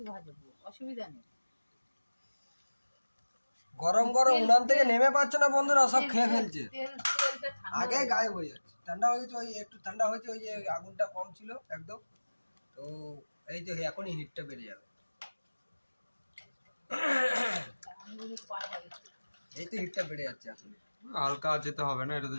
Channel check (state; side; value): inverted; both; correlation -1.00